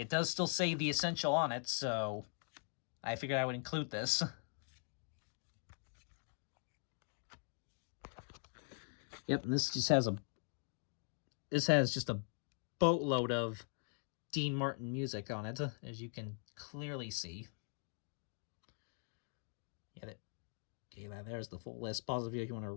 does still say The Essential on it, so I figured I would include this. Yep, and this just has just a boatload of Dean Martin music on it, as you can clearly see. Yeah, there's the full list. Pause the video if you want to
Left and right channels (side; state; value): right; silent; 50 dB below the other